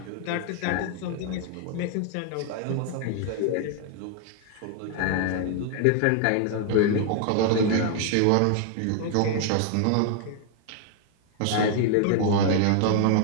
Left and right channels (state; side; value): different; both; correlation 0.00